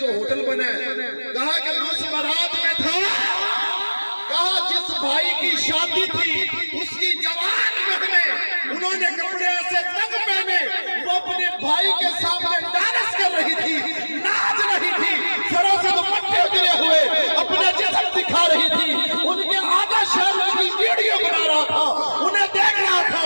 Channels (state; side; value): inverted; both; correlation -1.00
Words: ہوٹل بنا ہے، کہا کہ میں اس بارات میں تھا، کہا جس بھائی کی شادی تھی اس کی جوان بہنیں انہوں نے کپڑے ایسے تنگ پہنے، وہ اپنے بھائی کے سامنے ڈانس کر رہی تھی، ناچ رہی تھی، سروں سے دوپٹے گرے ہوئے اپنا جسم دکھا رہی تھی، ان کے آدھا شہر کی ویڈیو بنا رہا تھا، انہیں دیکھ رہا تھا۔